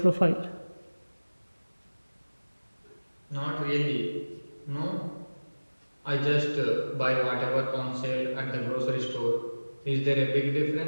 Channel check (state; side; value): inverted; both; correlation -1.00